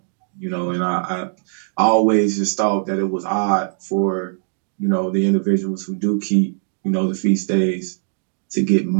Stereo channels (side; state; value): left; silent; 65 dB below the other